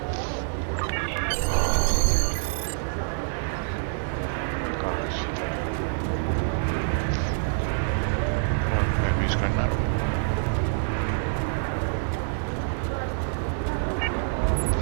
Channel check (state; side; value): silent; left; 61 dB below the other